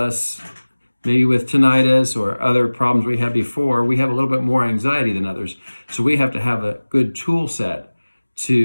maybe with tinnitus or other problems we had before, we have a little bit more anxiety than others. So we have to have a good tool set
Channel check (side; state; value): both; inverted; correlation -1.00